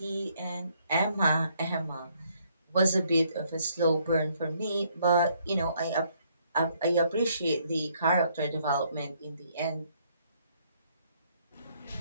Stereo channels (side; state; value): both; inverted; correlation -0.68